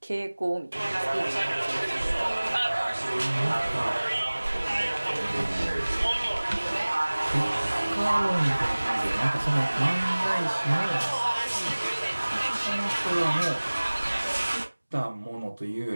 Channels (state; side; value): inverted; both; correlation -1.00